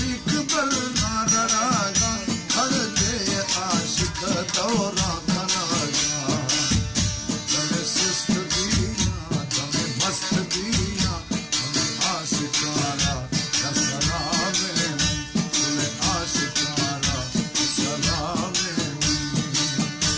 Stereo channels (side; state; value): both; identical; correlation 1.00